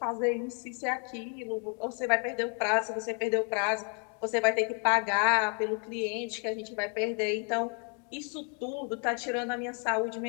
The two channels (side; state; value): right; quieter; 39.4 dB